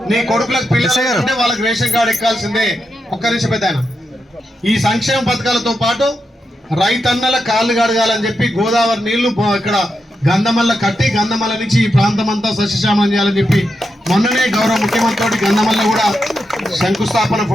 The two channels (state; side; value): normal; both; correlation 0.86